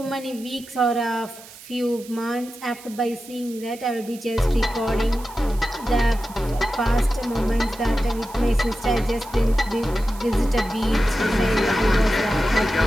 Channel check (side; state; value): right; noise; hiss, 19 dB below the sound